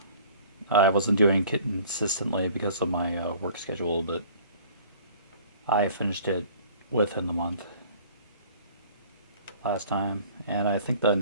I wasn't doing it consistently because of my work schedule, but I finished it within the month last time, and I think the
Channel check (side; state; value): both; inverted; correlation -0.50